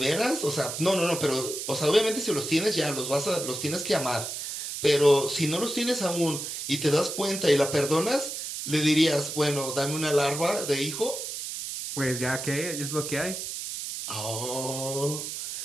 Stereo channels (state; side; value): noise; right; hiss, 6 dB below the sound